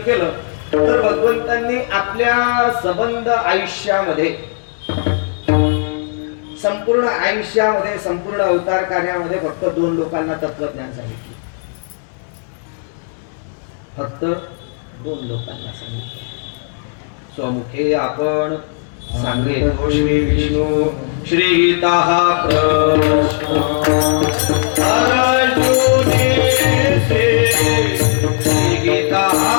केलं तर भगवंतांनी आपल्या संबंध आयुष्यामध्ये संपूर्ण आयुष्यामध्ये संपूर्ण अवतार कार्यामध्ये फक्त 2 लोकांना तत्वज्ञान सांगितले. फक्त 2 लोकांना सांगितले. स्वमुखे आपण सांगेतो श्री विष्णू श्री गीता प्रश्न अर्जुने श्री गीता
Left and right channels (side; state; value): right; silent; digital silence